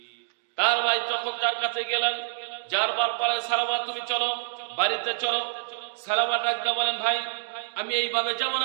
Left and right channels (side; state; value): left; silent; digital silence